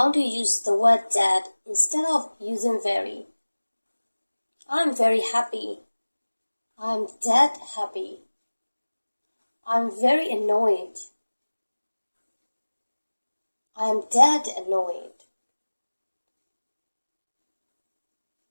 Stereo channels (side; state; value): both; inverted; correlation -1.00